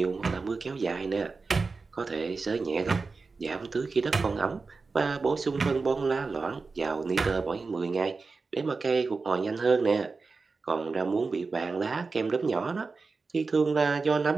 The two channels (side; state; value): left; quieter; 4.2 dB